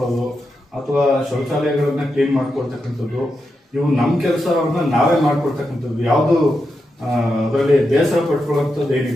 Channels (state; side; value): normal; both; correlation 0.87